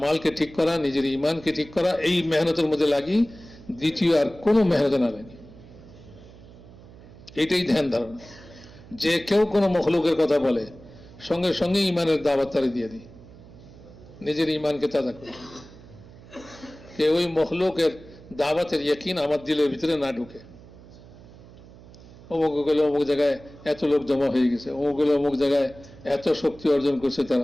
ঠিক করা, নিজের ইমানকে ঠিক করা, এই মেহনতের মধ্যে লাগি, দ্বিতীয় আর কোনো মেহনত না লাগি। এটাই ধ্যান ধারণা। যে কেউ কোনো মখলুকের কথা বলে, সঙ্গে সঙ্গে ইমানের দাওয়াত তারে দিয়ে দিই, নিজের ইমানকে তাজা করি। কেউ ওই মখলুকের দাওয়াতের ইয়াকিন আমার দিলের ভিতরে না ঢুকে। অমুক গেলে অমুক জায়গায় এত লোক জমা হয়ে গেছে, অমুক গেলে অমুক জায়গায় এত শক্তি অর্জন করছে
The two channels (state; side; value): noise; right; hum, 20 dB below the sound